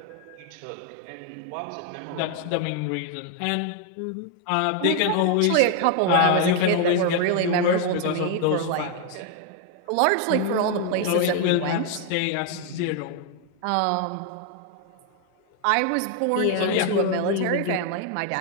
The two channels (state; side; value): different; both; correlation 0.01